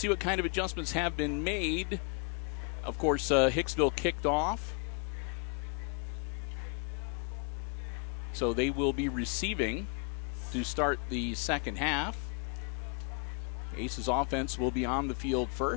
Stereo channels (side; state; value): right; quieter; 37.8 dB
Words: what kind of adjustments have been made. Of course, Hicksville kicked off. So they will be receiving to start the second half. Aces offense will be on the field